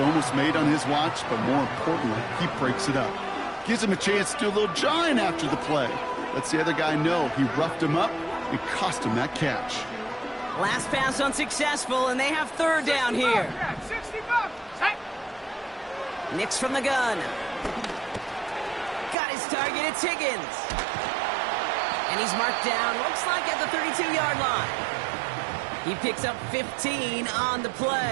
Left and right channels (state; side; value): drops out; left; at 19.2 s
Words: made on his watch, but more importantly, he breaks it up. Gives him a chance to do a little jawing after the play. Lets the other guy know he roughed him up and cost him that catch. Last pass unsuccessful, and they have 3rd down here. Nix from the gun. Got his target, it's Higgins. And he's marked down, looks like at the 32-yard line. He picks up 15 on the